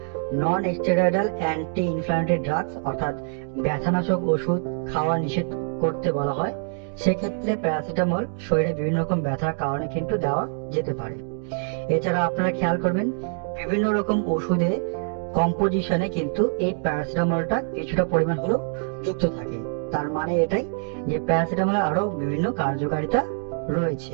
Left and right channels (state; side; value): silent; left; 62 dB below the other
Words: non steroidal anti inflammatory drugs অর্থাৎ ব্যথানাশক ওষুধ খাওয়া নিষেধ করতে বলা হয়, সেক্ষেত্রে প্যারাসিটামল শরীরে বিভিন্ন রকম ব্যথার কারণে কিন্তু দেওয়া যেতে পারে। এছাড়া আপনারা খেয়াল করবেন বিভিন্ন রকম ওষুধে কম্পোজিশনে কিন্তু এই প্যারাসিটামলটা কিছুটা পরিমাণ হলেও যুক্ত থাকে। তার মানে এটাই যে প্যারাসিটামলের আরো বিভিন্ন কার্যকারিতা